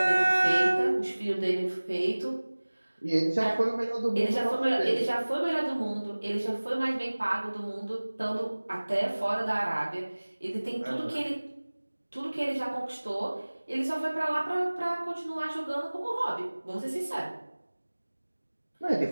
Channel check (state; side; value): inverted; both; correlation -1.00